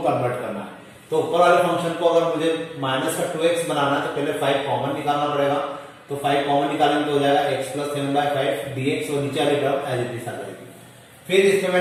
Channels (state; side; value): identical; both; correlation 1.00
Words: कन्वर्ट करना है। तो ऊपर वाले फंक्शन को अगर मुझे -2x बनाना है तो पहले 5 कॉमन निकालना पड़ेगा। तो 5 कॉमन निकालेंगे तो हो जाएगा x+7/5 dx और नीचे वाली टर्म एज इट इज आ जाएगी। फिर इसमें